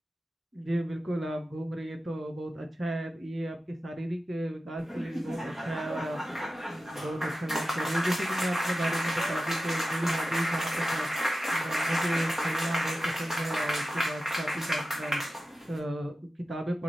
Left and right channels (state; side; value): normal; both; correlation 0.93